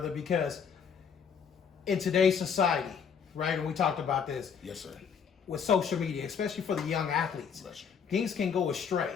because in today's society, right, and we talked about this, Yes, sir. with social media, especially for the young athletes, Bless you. things can go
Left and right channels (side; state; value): right; quieter; 6.9 dB